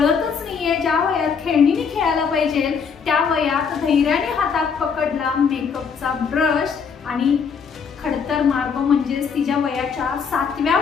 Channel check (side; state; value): right; quieter; 6.1 dB